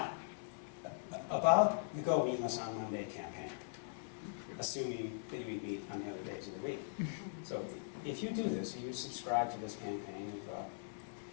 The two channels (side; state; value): right; silent; 51 dB below the other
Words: about the Go Meatless on Monday campaign, assuming that you eat meat on the other days of the week. So if you do this, you subscribe to this campaign of